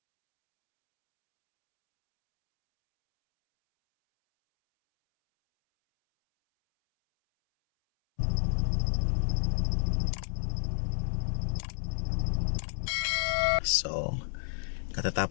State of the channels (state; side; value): silent; right; 58 dB below the other